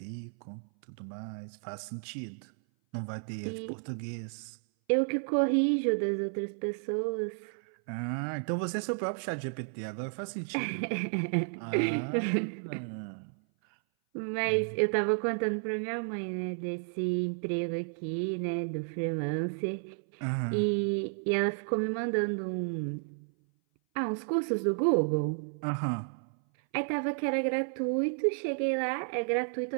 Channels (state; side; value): silent; left; 56 dB below the other